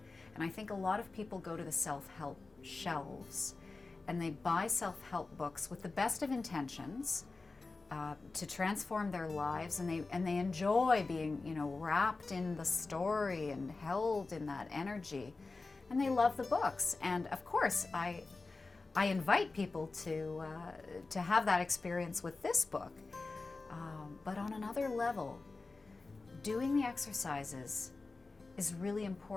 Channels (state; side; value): quieter; right; 3.7 dB